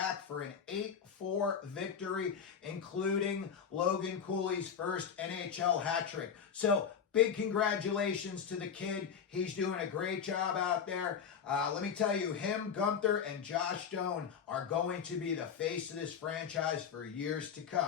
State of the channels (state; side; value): quieter; right; 7.2 dB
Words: for an 8-4 victory, including Logan Cooley's first NHL hat trick. So, big congratulations to the kid. He's doing a great job out there. Let me tell you, him, Gunther, and Josh Stone are going to be the face of this franchise for years to